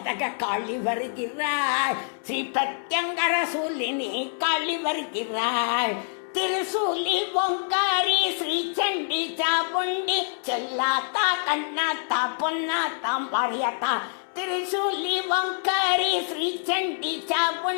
தக காளி வருகிறாள். ஸ்ரீ பிரத்யங்கர சூலினி காளி வருகிறாள். திருசூலி ஓங்காரி ஸ்ரீ சண்டி சாமுண்டி செல்லாத்தா கண்ணாத்தா பொன்னாத்தா மாரியாத்தா. திருசூலி ஓங்காரி ஸ்ரீ சண்டி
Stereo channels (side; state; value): right; silent; 61 dB below the other